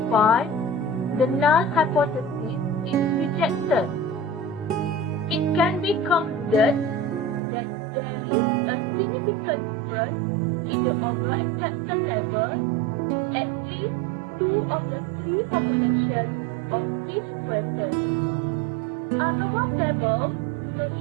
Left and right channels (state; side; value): drops out; left; at 7.4 s